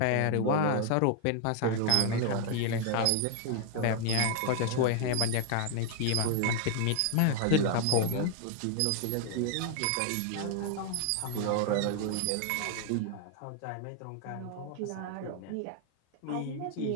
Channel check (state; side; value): different; both; correlation 0.00